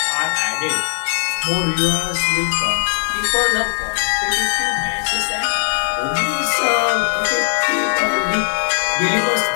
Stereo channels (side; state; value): right; silent; 57 dB below the other